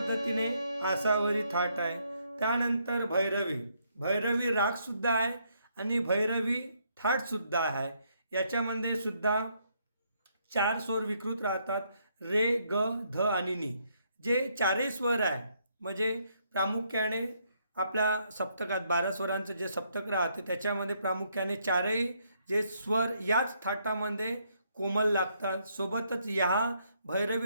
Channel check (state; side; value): inverted; both; correlation -0.73